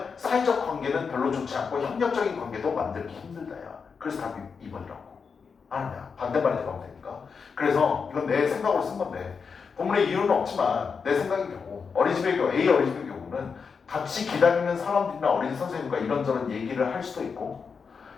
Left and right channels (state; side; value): quieter; right; 5.6 dB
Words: 사회적 관계는 별로 좋지 않고 협력적인 관계도 만들기 힘들다야. 그래서 답이 2번이라고. 아니야. 반대말이 들어가면 되니까. 그래서 이건 내 생각으로 쓴 건데 본문에 이유는 없지만 내 생각의 경우 어린이집의 경우 A 어린이집의 경우는 같이 기다리는 사람들이나 어린이 선생님과 이런저런 얘기를 할 수도 있고